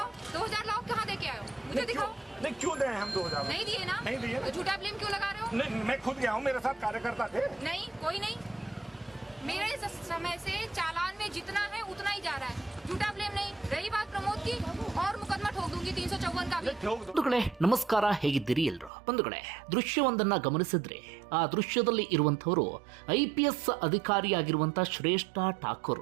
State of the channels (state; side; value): drops out; left; at 18.9 s